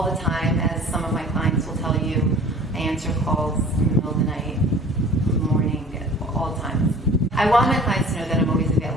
the time, as some of my clients will tell you. I answer calls in the middle of the night, morning, all the time. I want my clients to know that I'm always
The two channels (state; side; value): normal; both; correlation 0.46